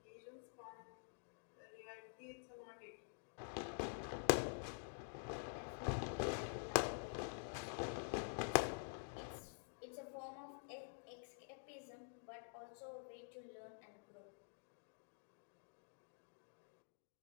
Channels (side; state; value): right; silent; digital silence